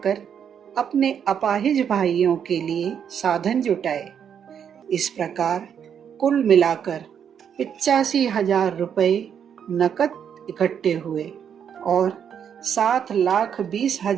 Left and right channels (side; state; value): left; quieter; 8.2 dB